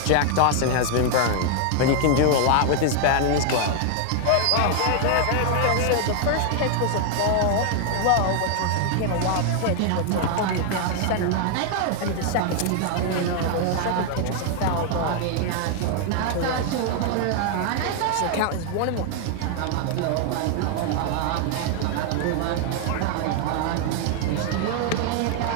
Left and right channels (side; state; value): both; different; correlation 0.00